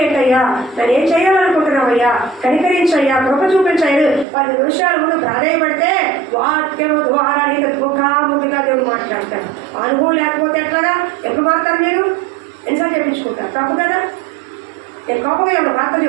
ఏంటయ్యా, నేను ఏం చేయాలనుకుంటున్నావయ్యా, కనికరించయ్యా, కృప చూపించాయి. 10 నిమిషాల ముందు ప్రాధాన్యపడితే వాక్యం ద్వారా నీకు ముఖాముఖిగా దేవుడు మాట్లాడతారు. అనుభవం లేకపోతే ఎట్లాగా? ఎప్పుడు మారుతారు మీరు? ఎన్నిసార్లు చెప్పించుకుంటారు? తప్పు కదా. నేను కోపంగా ఎవరు వార్త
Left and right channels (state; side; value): drops out; left; at 4.2 s